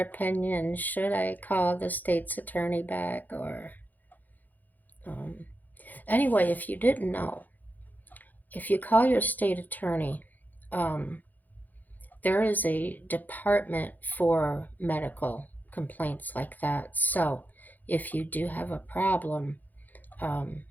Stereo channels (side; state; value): right; late; 0.083 ms